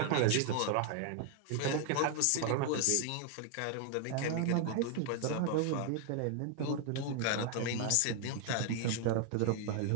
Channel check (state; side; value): different; both; correlation 0.00